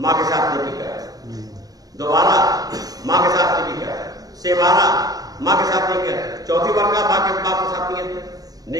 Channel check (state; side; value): late; left; 0.18 ms